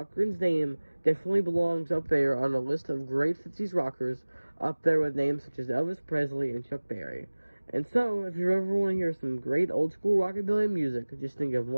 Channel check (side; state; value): both; inverted; correlation -1.00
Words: name definitely belongs up there on a list of great 50s rockers, up there with names such as Elvis Presley and Chuck Berry. And so, if you ever want to hear some great old school rockabilly music, just think of